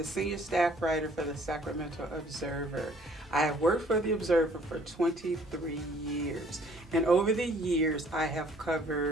senior staff writer for the Sacramento Observer. I have worked for the Observer for 23 years, and over the years I have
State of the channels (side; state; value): both; normal; correlation 0.58